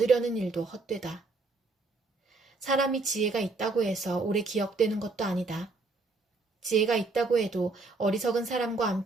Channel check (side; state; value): left; quieter; 3.5 dB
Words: 일도 헛되다. 사람이 지혜가 있다고 해서 오래 기억되는 것도 아니다. 지혜가 있다고 해도 어리석은 사람과